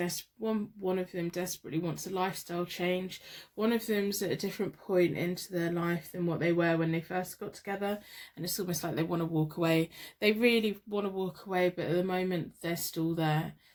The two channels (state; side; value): identical; both; correlation 1.00